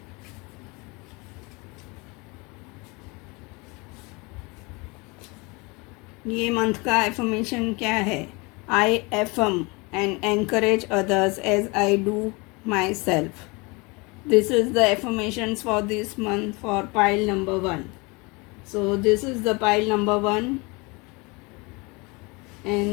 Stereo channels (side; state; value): right; quieter; 27.0 dB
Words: ये मंथ का एफर्मेशन क्या है? आई affirm and encourage others as I do myself. This is the affirmations for this month for pile number 1. So this is the pile number 1